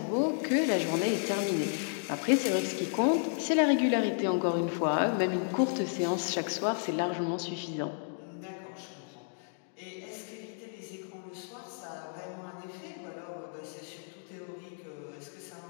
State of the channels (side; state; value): right; silent; digital silence